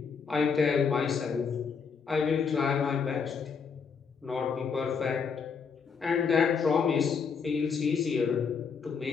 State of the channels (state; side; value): quieter; right; 5.9 dB